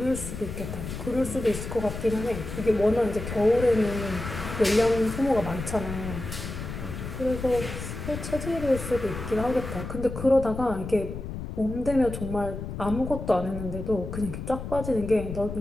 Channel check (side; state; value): left; noise; rumble, 7 dB below the sound